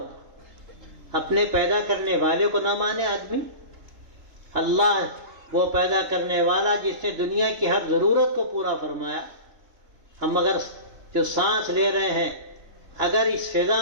اپنے پیدا کرنے والے کو نہ مانے آدمی۔ اللہ وہ پیدا کرنے والا جس نے دنیا کی ہر ضرورت کو پورا فرمایا۔ ہم اگر جو سانس لے رہے ہیں، اگر اس فضا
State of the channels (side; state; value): left; late; 2.9 ms